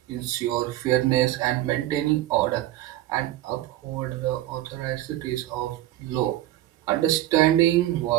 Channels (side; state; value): left; quieter; 14.7 dB